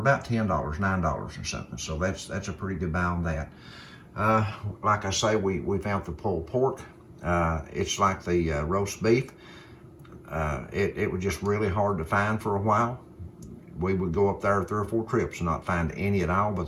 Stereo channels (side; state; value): both; identical; correlation 1.00